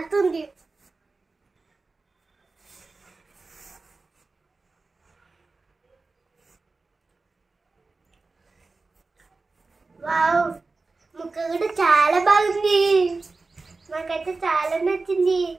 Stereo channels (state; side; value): quieter; left; 3.8 dB